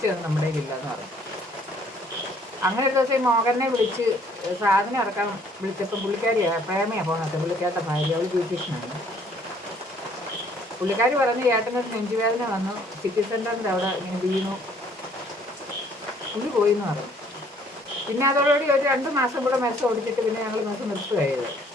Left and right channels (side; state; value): both; normal; correlation 0.60